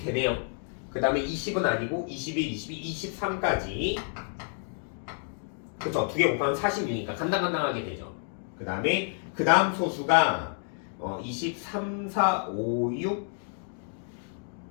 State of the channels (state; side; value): silent; right; 58 dB below the other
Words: 되네요. 그 다음에 20은 아니고 21, 22, 23까지 그쵸. 두 개 곱하면 46이니까 간당간당하게 되죠. 그 다음에 그 다음 소수가 23, 4, 5, 6,